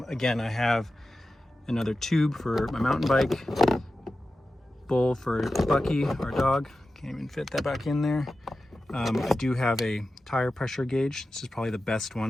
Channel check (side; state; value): both; normal; correlation 0.93